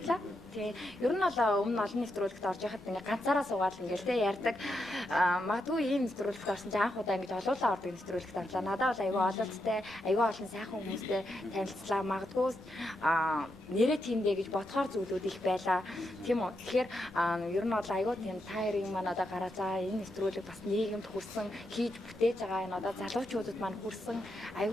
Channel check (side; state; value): both; normal; correlation 0.83